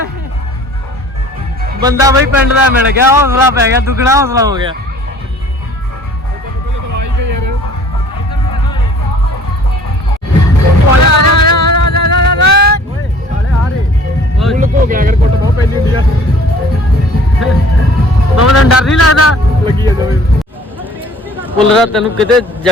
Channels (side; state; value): both; normal; correlation 0.52